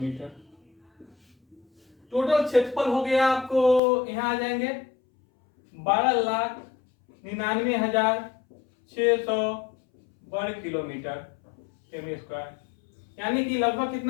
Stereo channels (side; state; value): right; drops out; at 3.8 s